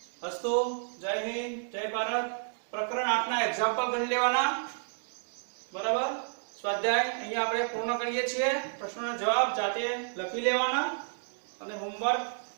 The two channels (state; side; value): silent; left; digital silence